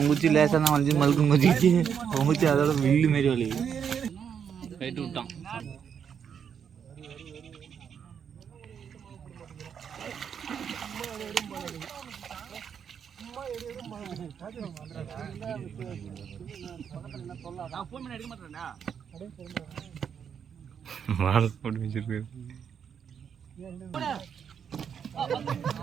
குச்சி லேசாக தான் வளைஞ்சு மழுக்கு மதிச்சு, அவன் குச்சி அதோட வில்லு மாரி வலி கைட்டு விட்டான். மாலை போட்டு வச்சிருக்கு.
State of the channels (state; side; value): quieter; left; 7.6 dB